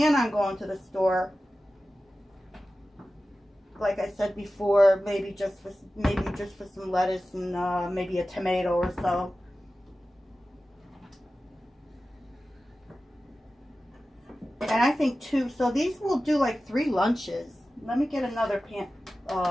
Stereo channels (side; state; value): both; normal; correlation 0.95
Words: on going to the store. Like I said before, maybe just for some lettuce and maybe a tomato or so. And I think two. So these will do like 3 lunches. Let me get another